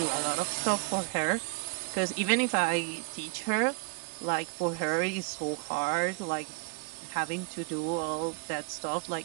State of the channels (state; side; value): quieter; left; 34.6 dB